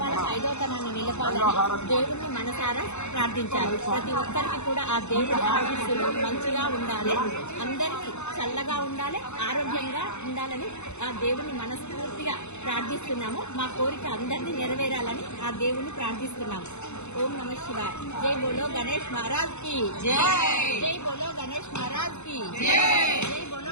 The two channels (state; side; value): late; right; 0.82 ms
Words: ఐదోతనాన్ని నిలపాలని దేవుణ్ణి మనసారా ప్రార్థించారు. ప్రతి ఒక్కరికి కూడా ఆ దేవుడి ఆశీస్సులు మంచిగా ఉండాలి, అందరికీ చల్లగా ఉండాలి, ఆరోగ్యంగా ఉండాలని ఆ దేవుణ్ణి మనస్ఫూర్తిగా ప్రార్థిస్తున్నాము. మా కోరిక అందరినీ నెరవేరాలని ఆ దేవుణ్ణి ప్రార్థిస్తున్నాము. ఓం నమ శివాయ. జై బోలో గణేష్ మహారాజ్ కి జై. జై బోలో గణేష్ మహారాజ్ కి జై. జై